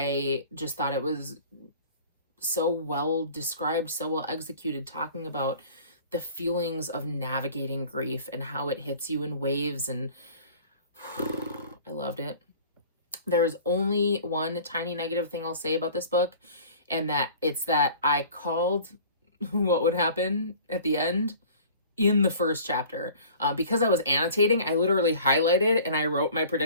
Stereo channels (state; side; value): inverted; both; correlation -0.46